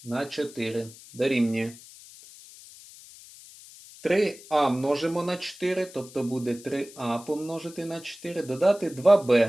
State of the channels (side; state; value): left; noise; hiss, 19 dB below the sound